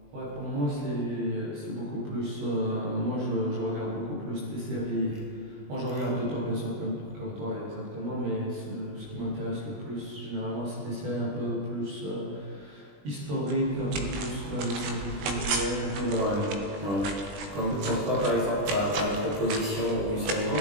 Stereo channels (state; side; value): late; left; 20 ms